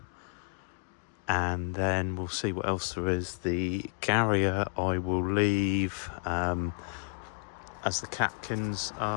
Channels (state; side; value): silent; right; 57 dB below the other